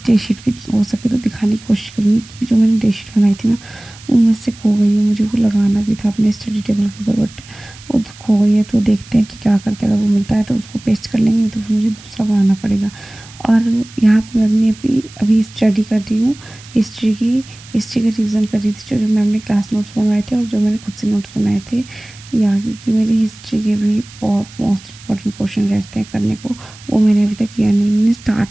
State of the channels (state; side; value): noise; right; hiss, 21 dB below the sound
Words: डे शीट भी हो सके तो दिखाने की कोशिश करूँगी, क्योंकि जो मैंने डे शीट बनाई थी ना, वो मुझसे खो गई है। मुझे वो लगाना भी था अपने स्टडी टेबल के ऊपर, बट वो तो खो गई है। तो देखते हैं कि क्या करते हैं। अगर वो मिलता है तो उसको पेस्ट कर लेंगे, तो फिर मुझे दूसरा बनाना पड़ेगा। और यहाँ पे मैं अपनी अभी स्टडी कर रही हूँ हिस्ट्री का रिवीजन कर रही थी, जो मैम ने क्लास नोट्स बनवाए थे और जो मैंने खुद से नोट्स बनाए थे। या क्योंकि मेरी हिस्ट्री के भी बहुत मोस्ट इंपॉर्टेंट क्वेश्चन रहते हैं करने को, वो मैंने अभी तक किया नहीं। मैंने